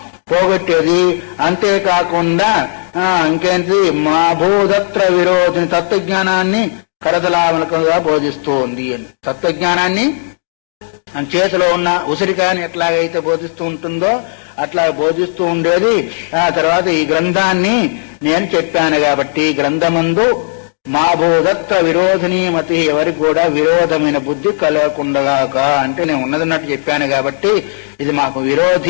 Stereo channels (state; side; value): silent; right; digital silence